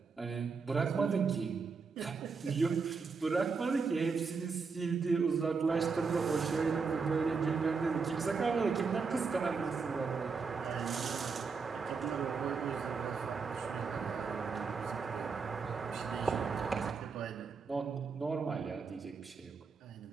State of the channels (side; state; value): left; quieter; 5.0 dB